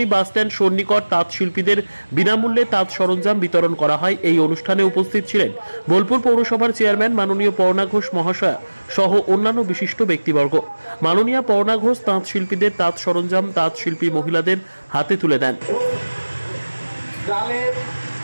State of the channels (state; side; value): inverted; both; correlation -1.00